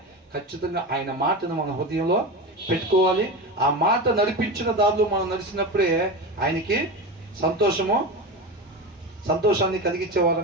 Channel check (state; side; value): normal; both; correlation 0.23